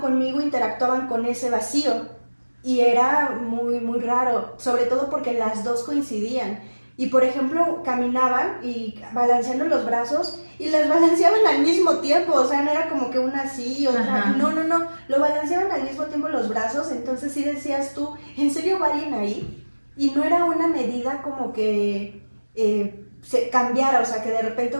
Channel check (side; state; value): both; inverted; correlation -1.00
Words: interactuaban con ese vacío. Y era muy, muy raro, sobre todo porque las dos coincidían. Y por ejemplo, caminaban y balanceando los brazos y las balanceaban al mismo tiempo. O sea, no era como que una así y otra. No, lo balanceaban al mismo tiempo los brazos. Entonces sí decías tú, ¿en serio va alguien ahí? Y no era una medida como que se cambiara, o sea, que de repente